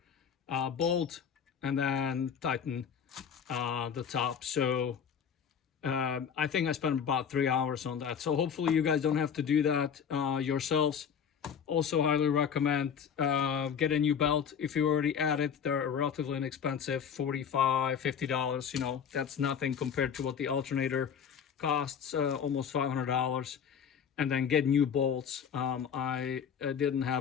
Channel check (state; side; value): quieter; right; 7.5 dB